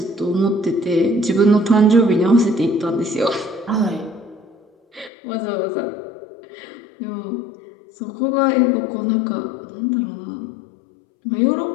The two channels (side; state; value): right; drops out; at 5.1 s